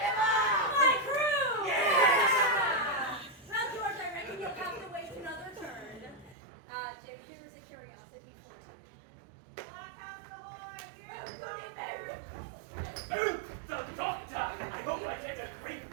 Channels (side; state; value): left; drops out; at 6.4 s